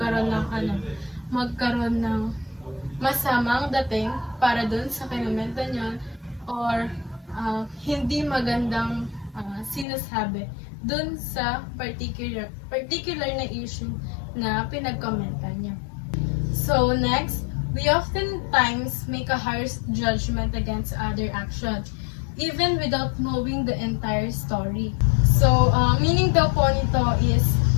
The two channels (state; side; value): drops out; right; at 9.9 s